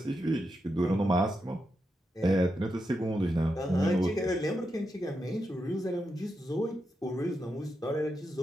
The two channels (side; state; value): both; normal; correlation 0.86